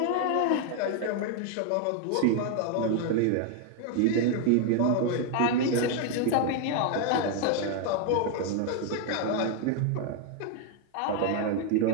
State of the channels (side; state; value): both; different; correlation 0.00